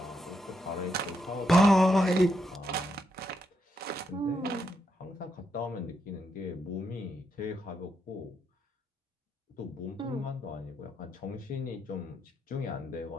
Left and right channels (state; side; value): normal; both; correlation 0.80